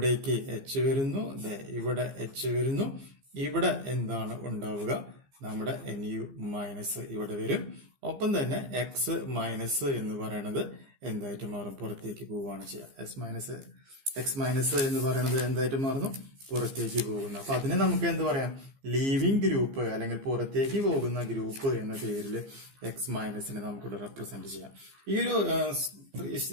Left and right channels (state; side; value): late; left; 15 ms